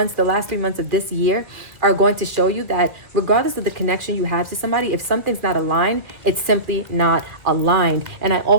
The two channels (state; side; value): late; left; 1.7 ms